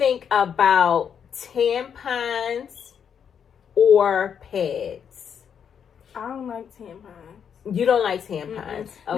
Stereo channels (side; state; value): right; quieter; 7.7 dB